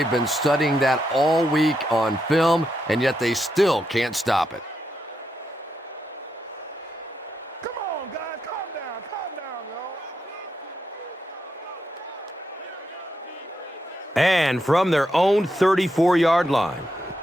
been studying that all week on film, and yet they still can't stop it. And from their own 34-yard line.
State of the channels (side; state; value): both; normal; correlation 0.83